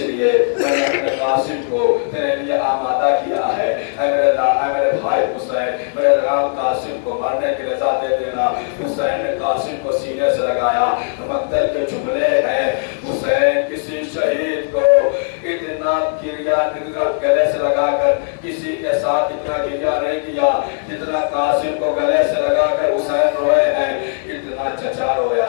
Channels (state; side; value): silent; right; digital silence